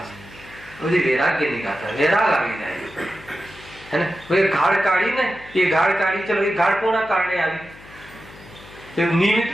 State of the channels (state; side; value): noise; left; hum, 21 dB below the sound